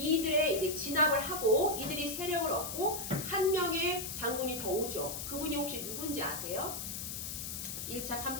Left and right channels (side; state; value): left; noise; hiss, 5 dB below the sound